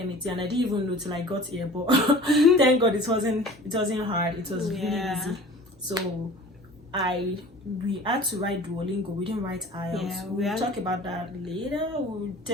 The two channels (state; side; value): normal; both; correlation 0.43